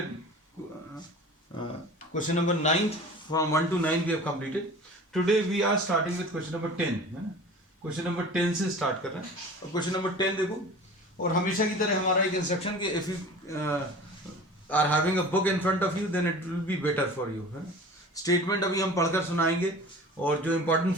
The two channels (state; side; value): normal; both; correlation 0.40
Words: question number 9. From 1 to 9, we have completed. Today, we are starting with question number 10. है ना? Question number 10 से start कर रहे हैं. अब question number 10 देखो. और हमेशा की तरह हमारा एक instruction कि if you are having a book in front of you, then it will be better for you. है ना? स्टेटमेंट अभी हम पढ़कर सुनाएंगे और जो इंपॉर्टेंट